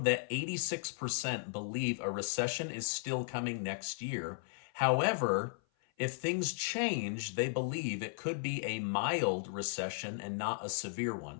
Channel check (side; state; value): right; silent; 54 dB below the other